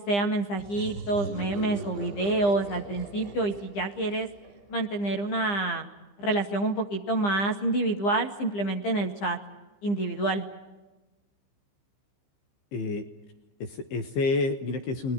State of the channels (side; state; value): right; late; 15 ms